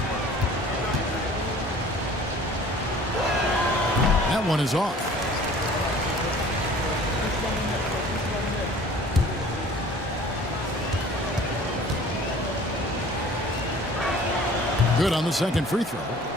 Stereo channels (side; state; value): both; normal; correlation 0.48